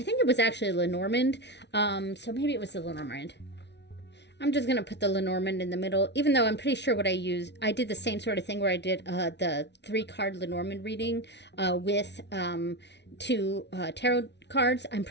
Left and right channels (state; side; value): late; right; 0.50 ms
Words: think it was actually Lenormand, so maybe it was the Lenormand. I'm just going to put the Lenormand in the middle, even though I'm pretty sure what I used, I did the same sort of thing where I did the 3-card Lenormand reading with 2 tarot cards. I'm